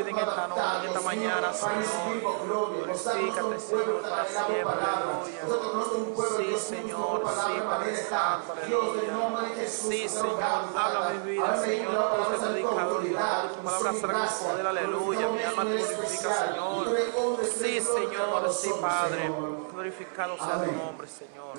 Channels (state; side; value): silent; left; 58 dB below the other